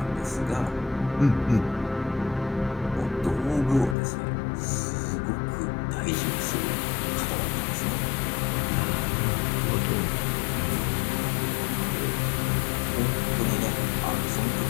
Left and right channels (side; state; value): right; drops out; at 4.0 s